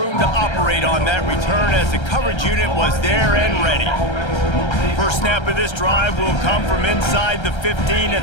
to operate on that return as the coverage unit was there and ready. First snap of this drive will come from inside the 15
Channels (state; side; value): late; right; 1.3 ms